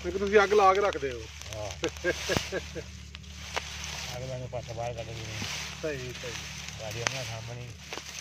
ਕਿ ਤੁਸੀਂ ਅੱਗ ਲਾ ਕੇ ਰੱਖਦੇ ਹੋ ਹਾਂ ਅਗਲਾ ਨੂੰ ਪਾਸਾ ਬਾਹਰ ਕੱਢ ਦਿੰਦੇ ਸਹੀ ਸਹੀ ਗਾੜੀ ਉਹਨਾਂ ਸਾਹਮਣੇ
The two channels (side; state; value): both; identical; correlation 1.00